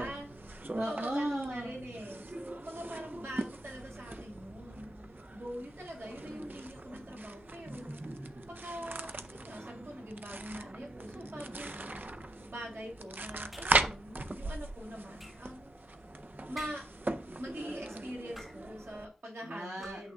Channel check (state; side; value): normal; both; correlation 0.79